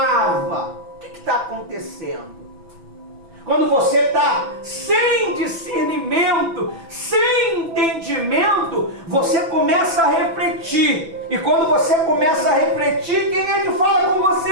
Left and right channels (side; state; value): left; late; 6.0 ms